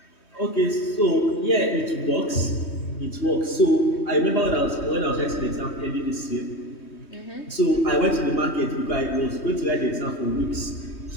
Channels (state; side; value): late; right; 3.2 ms